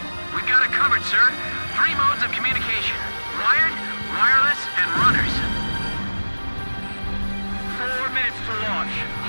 We've got it covered, sir. 3 modes of communication. Wired, wireless, and runners. 4 minutes to launch.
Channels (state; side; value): inverted; both; correlation -1.00